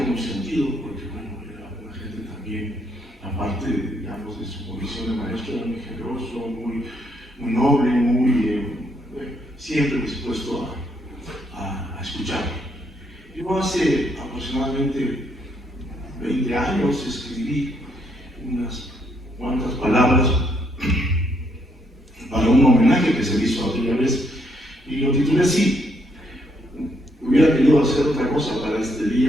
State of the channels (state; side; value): normal; both; correlation 0.73